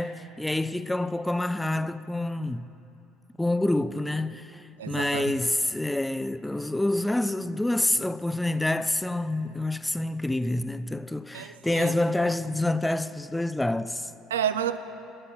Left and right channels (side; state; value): both; normal; correlation 0.88